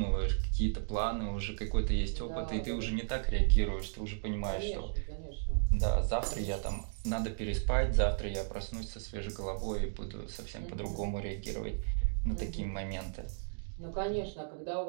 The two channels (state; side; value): silent; left; digital silence